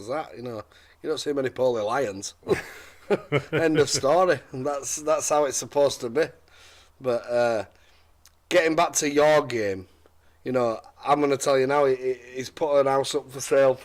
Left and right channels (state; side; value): identical; both; correlation 1.00